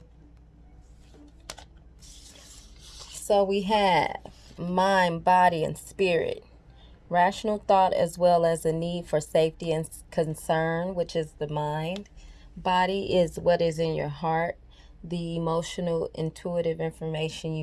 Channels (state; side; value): identical; both; correlation 1.00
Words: So we have mind, body, and spirit. Rational thought as well as a need for safety and concern, which is the mind. Body is what is in your heart, the emotional, intuitive information